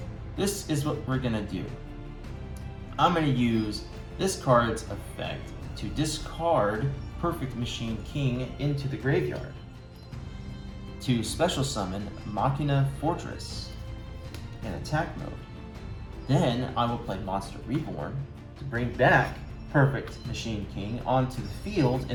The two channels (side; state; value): both; identical; correlation 1.00